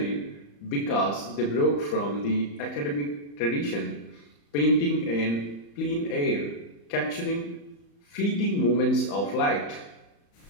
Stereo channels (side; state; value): right; late; 35 ms